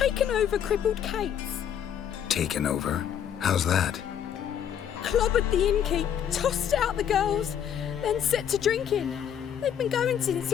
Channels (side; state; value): right; quieter; 9.1 dB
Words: over crippled Kate's. Taken over? How's that? Clobbered the innkeep, tossed out the girls, then set to drinking. They've been going since